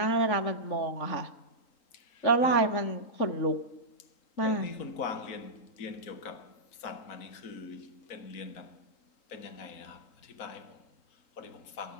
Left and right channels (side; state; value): right; late; 3.8 ms